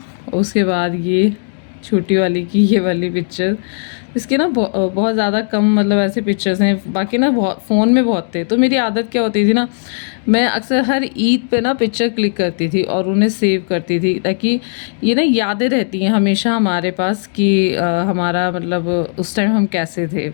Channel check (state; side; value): silent; right; digital silence